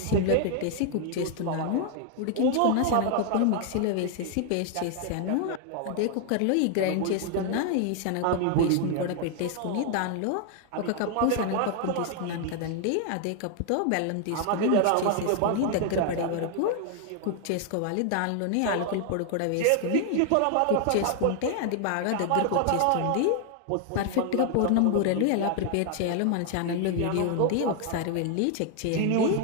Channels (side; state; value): both; different; correlation 0.00